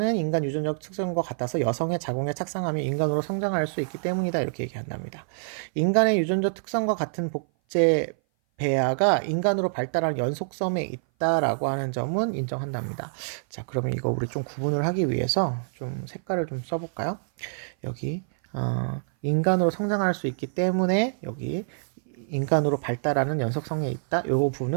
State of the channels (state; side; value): silent; left; 57 dB below the other